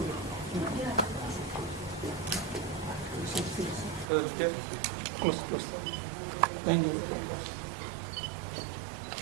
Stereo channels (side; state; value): left; drops out; at 4.0 s